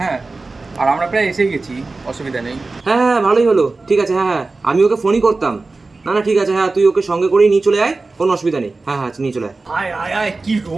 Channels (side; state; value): left; quieter; 3.6 dB